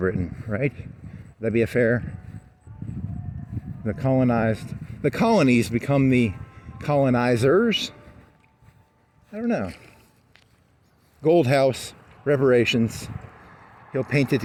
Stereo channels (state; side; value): identical; both; correlation 1.00